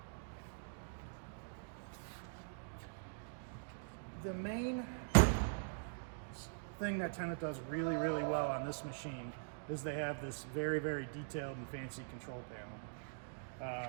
The main thing that Tennant does really, really well on this machine is they have this very, very detailed and fancy control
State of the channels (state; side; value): silent; left; digital silence